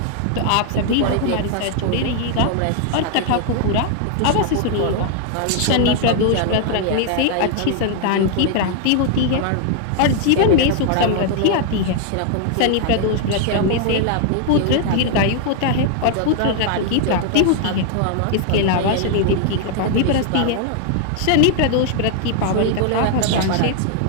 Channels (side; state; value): both; different; correlation 0.00